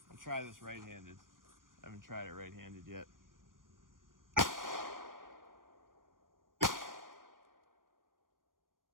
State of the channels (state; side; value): late; left; 0.90 ms